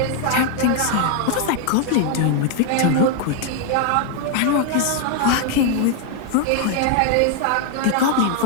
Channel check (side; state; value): both; different; correlation 0.01